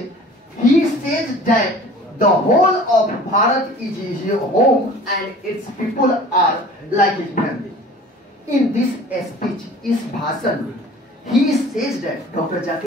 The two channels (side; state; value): both; normal; correlation 0.45